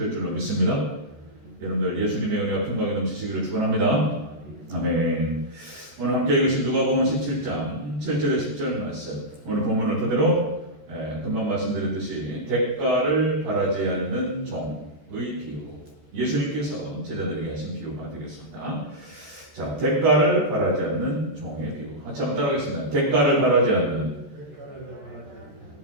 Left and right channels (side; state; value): left; late; 14 ms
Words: 줄로 믿습니다. 여러분들 예수님의 은혜와 평강이 넘치시기를 축원합니다. 아멘. 오늘 함께 읽으신 누가복음 17장 7절에 10절 말씀. 오늘 본문을 그대로 금방 말씀드렸듯이 대가를 바라지 않는 종의 비유. 예수님께서 제자들에게 하신 비유가 되겠습니다. 자, 대가를 바라지 않는 종의 비유. 같이 한번 따라하겠습니다. 대가를 바라지 않는